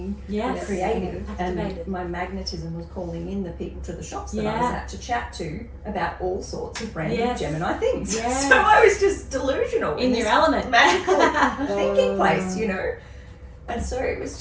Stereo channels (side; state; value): both; identical; correlation 1.00